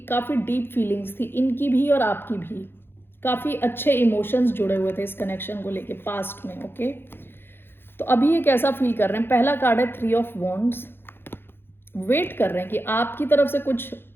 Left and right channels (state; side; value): late; right; 0.10 ms